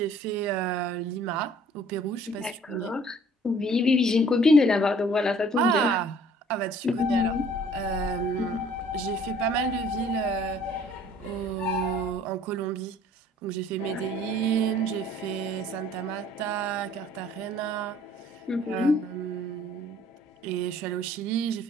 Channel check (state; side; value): normal; both; correlation 0.55